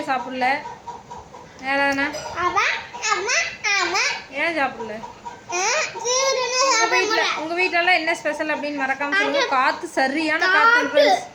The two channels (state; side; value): identical; both; correlation 1.00